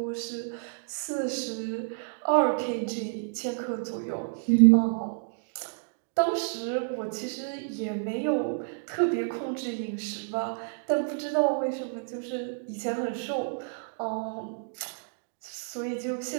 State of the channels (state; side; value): silent; left; digital silence